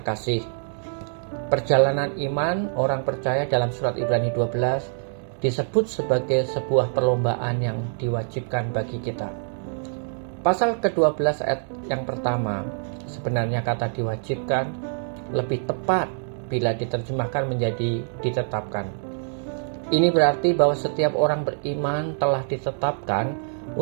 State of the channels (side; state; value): left; silent; digital silence